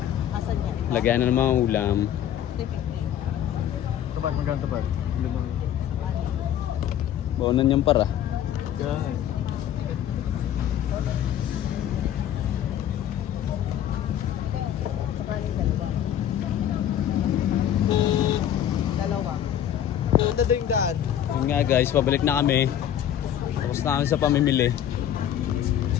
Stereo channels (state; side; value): quieter; right; 10.5 dB